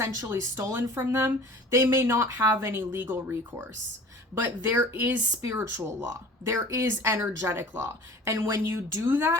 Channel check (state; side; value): normal; both; correlation 0.43